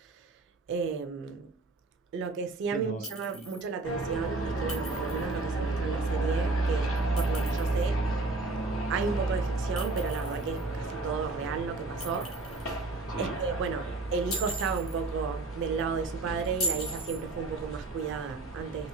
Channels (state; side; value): quieter; left; 3.3 dB